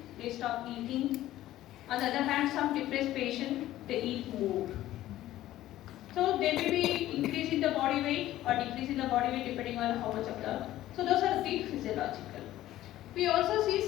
they stop eating. On the other hand, some depressed patients, they eat more. So they may be increase in the body weight or decrease in the body weight depending on how much of the. So those are the physiological. We also see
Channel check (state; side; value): quieter; right; 14.4 dB